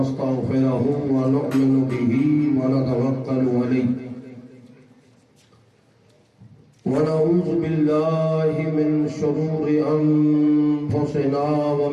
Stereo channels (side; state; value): both; identical; correlation 1.00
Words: ونؤمن به ونتوكل عليه ونعوذ بالله من شرور أنفسنا